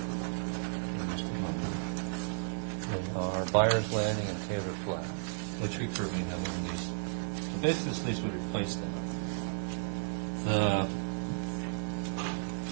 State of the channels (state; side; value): silent; left; digital silence